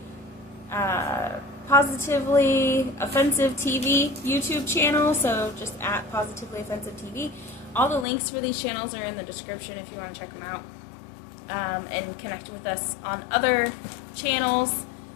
Positively Offensive TV YouTube channel, so just at Positively Offensive TV. All the links for these channels are in the description if you want to check them out, and connect with us on other channels.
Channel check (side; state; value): right; drops out; at 8.1 s